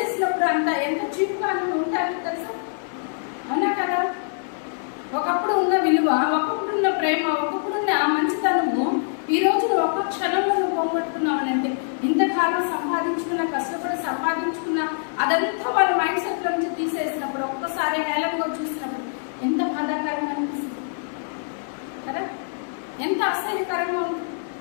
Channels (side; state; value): right; silent; digital silence